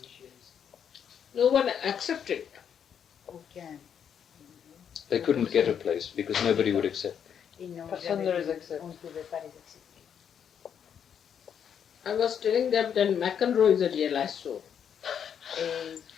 No one accepted. Aucun. They couldn't get a place because nobody would accept. Personne ne les accepte. On ne pouvait pas les accepter. I was telling them that McEnroe is a realized soul. Et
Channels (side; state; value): right; quieter; 8.2 dB